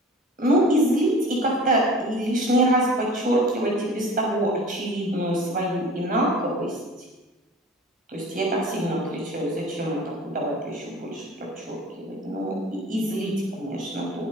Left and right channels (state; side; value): normal; both; correlation 0.42